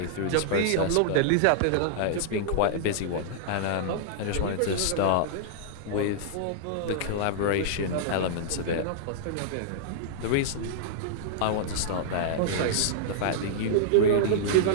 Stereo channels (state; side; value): different; both; correlation -0.01